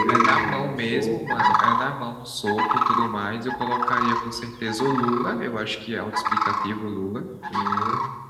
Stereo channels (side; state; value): both; identical; correlation 1.00